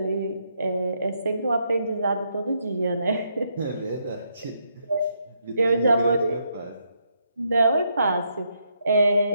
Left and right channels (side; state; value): both; inverted; correlation -0.77